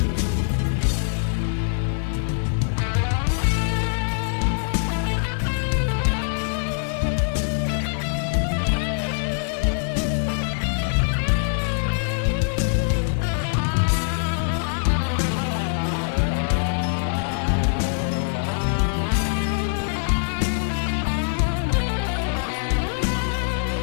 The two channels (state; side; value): silent; right; 56 dB below the other